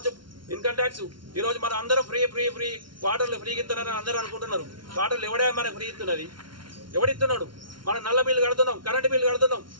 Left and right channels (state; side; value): late; left; 0.72 ms